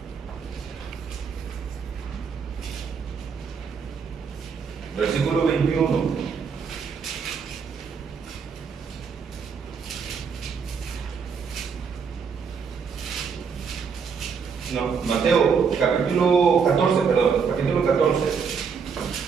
Versículo 21. No, Mateo capítulo 14, perdón, capítulo 14.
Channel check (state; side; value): quieter; left; 6.1 dB